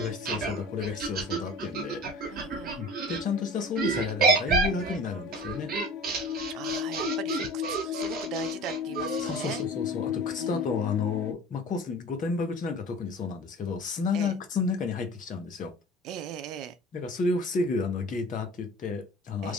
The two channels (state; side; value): normal; both; correlation 0.40